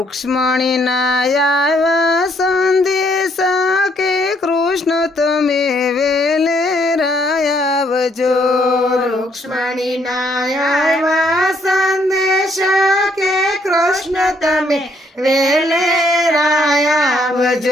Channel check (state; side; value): normal; both; correlation 0.69